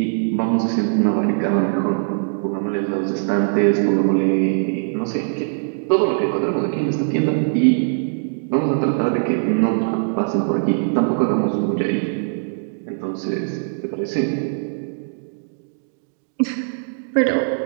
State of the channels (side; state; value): left; silent; digital silence